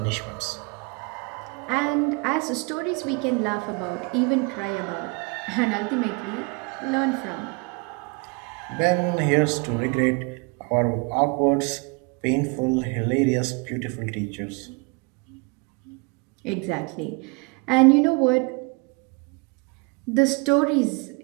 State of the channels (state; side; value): quieter; left; 30.5 dB